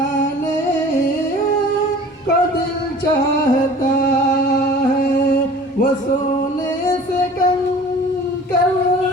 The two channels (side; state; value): both; normal; correlation 0.45